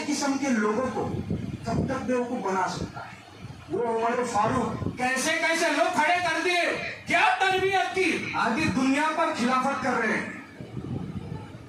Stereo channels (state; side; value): identical; both; correlation 1.00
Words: قسم کے لوگوں کو کب تک بیوقوف بنا سکتا ہے. وہ عمر فاروق کیسے کیسے لوگ کھڑے کر دیے, کیا تربیت کی, آدھی دنیا پر خلافت کر رہے ہیں.